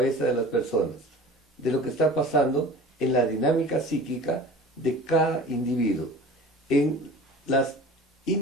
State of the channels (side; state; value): both; normal; correlation 0.40